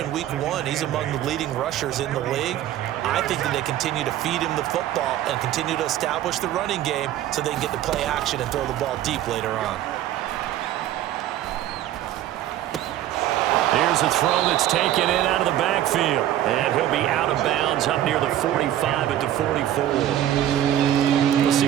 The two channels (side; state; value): left; quieter; 12.3 dB